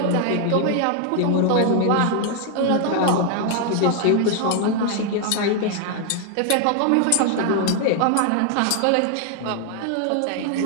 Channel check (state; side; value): different; both; correlation 0.00